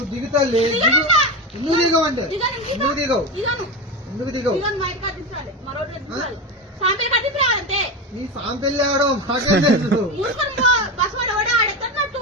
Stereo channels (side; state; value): both; normal; correlation 0.20